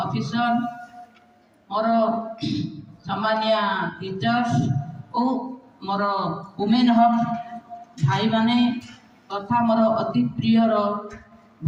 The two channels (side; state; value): both; identical; correlation 1.00